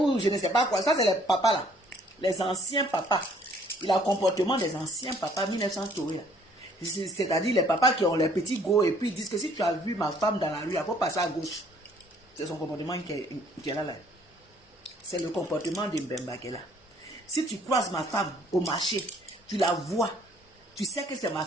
je ne sais pas quoi. Ça, c'est les papas là, les anciens papas. Il a le comportement des anciens papas 1900 tourés. C'est-à-dire les papas qui ont les petits go et puis ils disent que si tu as vu ma femme dans la rue, il faut passer à gauche. C'est son comportement qui est là. C'est le comportement de Mbemba qui est là. Si tu croises ma femme au marché, tu la vois, tu sais que c'est ma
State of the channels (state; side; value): normal; both; correlation 0.60